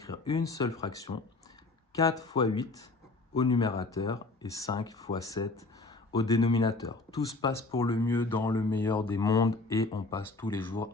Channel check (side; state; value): right; quieter; 3.4 dB